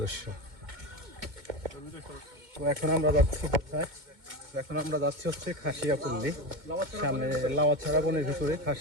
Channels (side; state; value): left; late; 2.2 ms